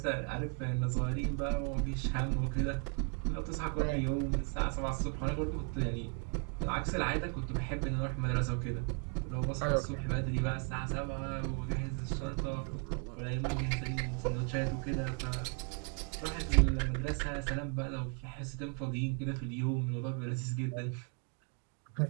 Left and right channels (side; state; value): left; quieter; 38.3 dB